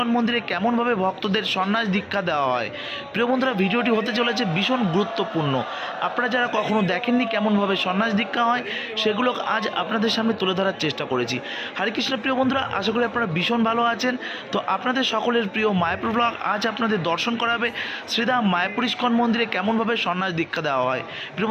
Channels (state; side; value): identical; both; correlation 1.00